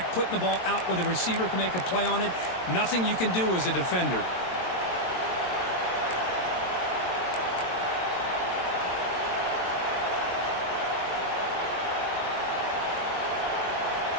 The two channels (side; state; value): right; late; 22 ms